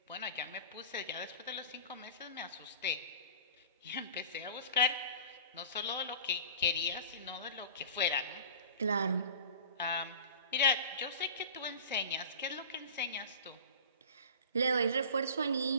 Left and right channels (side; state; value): both; inverted; correlation -0.39